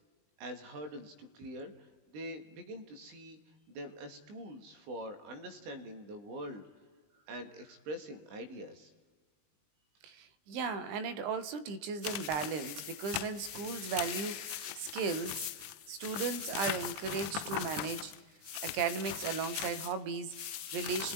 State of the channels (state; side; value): late; left; 20 ms